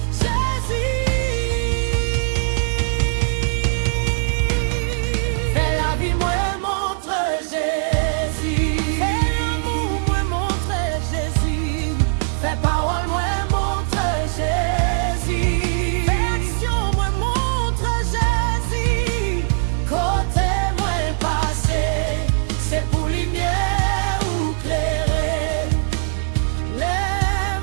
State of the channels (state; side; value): silent; left; 55 dB below the other